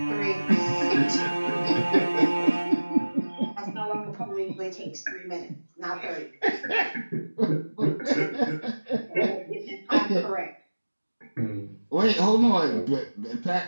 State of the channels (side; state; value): both; inverted; correlation -1.00